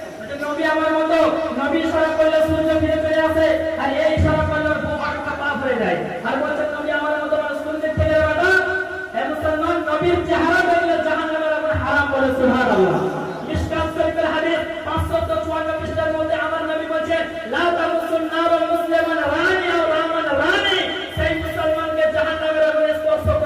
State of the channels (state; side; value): identical; both; correlation 1.00